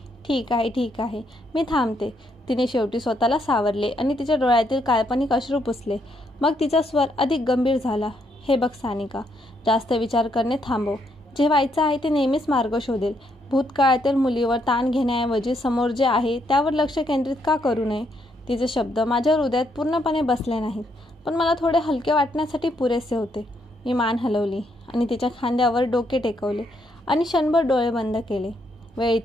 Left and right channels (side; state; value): both; normal; correlation 0.75